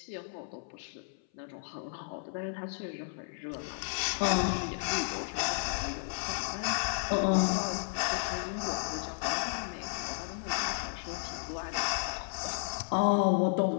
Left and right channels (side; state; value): right; silent; 56 dB below the other